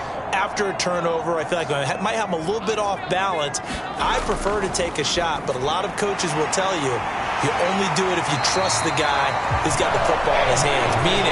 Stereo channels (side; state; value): both; identical; correlation 1.00